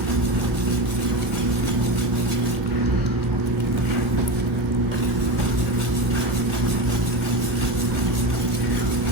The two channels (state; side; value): late; left; 1.4 ms